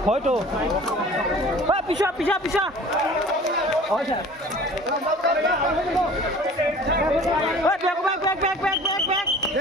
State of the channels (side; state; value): both; normal; correlation 0.45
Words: হয়তো পিছা পিছা পিছা হয় স্যার